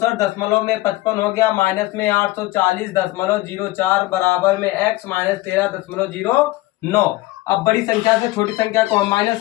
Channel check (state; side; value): quieter; right; 18.8 dB